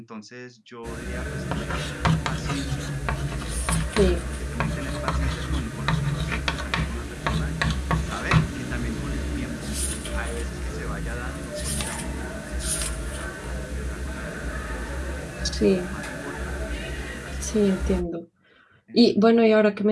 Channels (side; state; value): both; identical; correlation 1.00